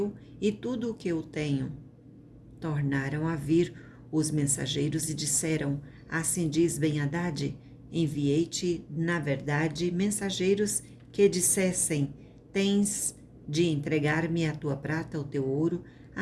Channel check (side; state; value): both; identical; correlation 1.00